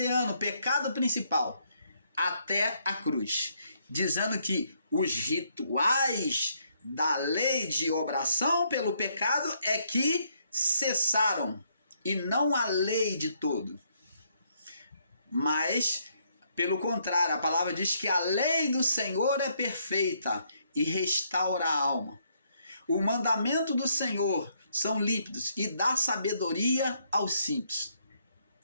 pecado principal, até a cruz, dizendo que os rituais da lei de obração pelo pecado é que cessaram, e não a lei de todo. Mas, pelo contrário, a palavra diz que a lei do Senhor é perfeita e restaura a alma. O mandamento do Senhor são límpidos e dá sabedoria aos simples.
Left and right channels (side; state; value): both; inverted; correlation -0.72